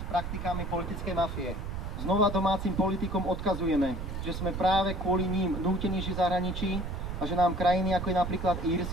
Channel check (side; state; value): right; noise; rumble, 5 dB below the sound